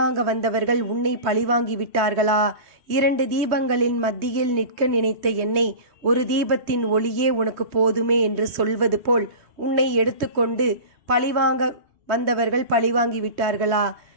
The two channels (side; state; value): left; late; 3.1 ms